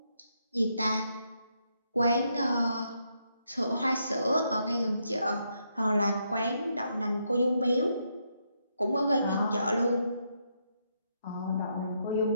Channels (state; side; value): inverted; both; correlation -0.78